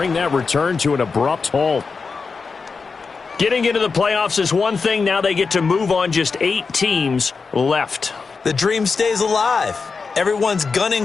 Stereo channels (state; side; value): quieter; right; 4.8 dB